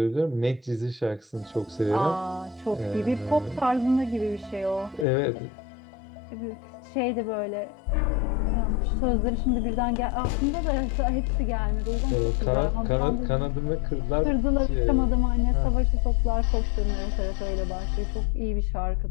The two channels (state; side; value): drops out; right; at 5.1 s